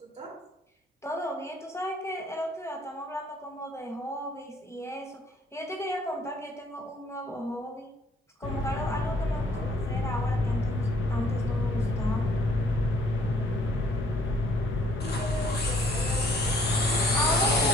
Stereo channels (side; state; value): both; normal; correlation 0.62